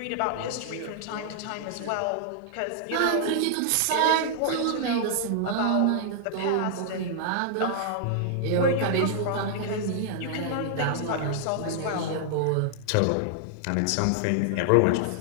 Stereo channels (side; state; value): both; different; correlation -0.01